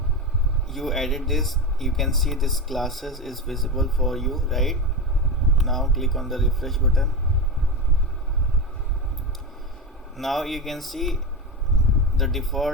you added this, you can see this classes is visible for you, right? Now click on the refresh button. Now you can see the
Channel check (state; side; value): normal; both; correlation 0.19